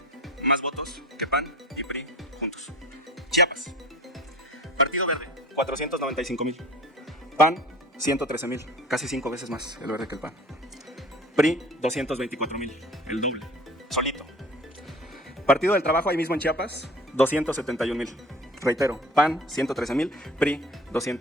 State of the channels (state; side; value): normal; both; correlation 0.42